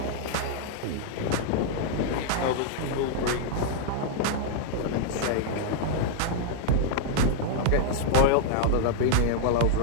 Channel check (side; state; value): both; different; correlation -0.01